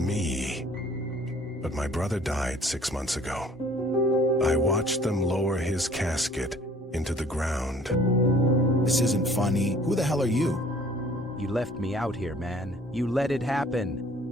But my brother died 6 months ago. I watched them lower his casket into the ground. This isn't funny. Who the hell are you? You left me out here, man. You let it happen.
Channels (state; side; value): normal; both; correlation 0.53